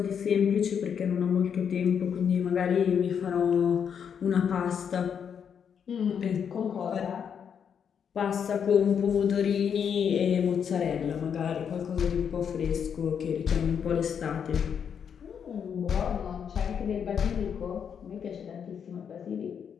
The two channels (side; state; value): right; quieter; 7.6 dB